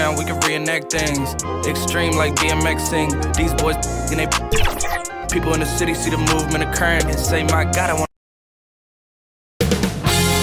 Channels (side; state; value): both; identical; correlation 1.00